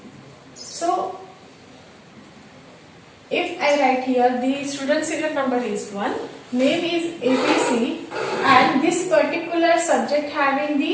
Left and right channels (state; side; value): identical; both; correlation 1.00